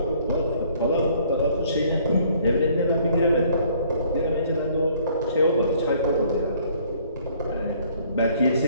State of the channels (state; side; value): inverted; both; correlation -0.60